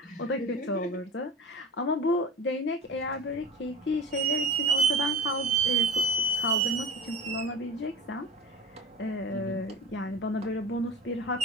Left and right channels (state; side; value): normal; both; correlation 0.33